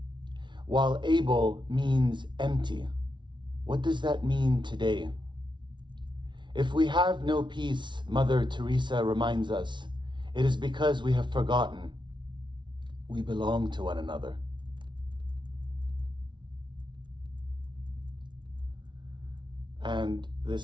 while Abel means empty. What does that mean today? If we have no peace, Mother Teresa reminds us, it is because we have forgotten we belong to one another. And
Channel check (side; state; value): left; late; 0.23 ms